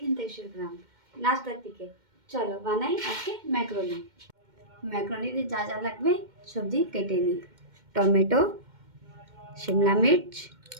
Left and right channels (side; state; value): left; late; 2.1 ms